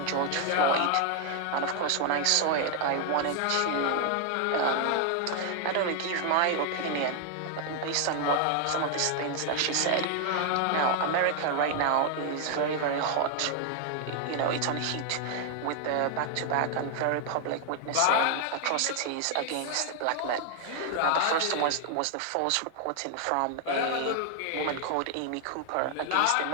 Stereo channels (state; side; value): different; both; correlation 0.00